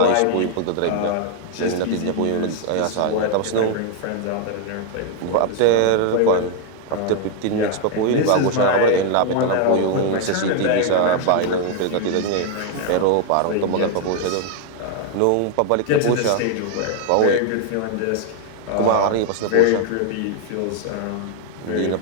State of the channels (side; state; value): both; different; correlation 0.00